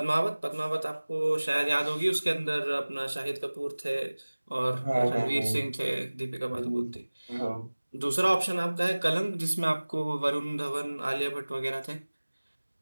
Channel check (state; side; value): inverted; both; correlation -1.00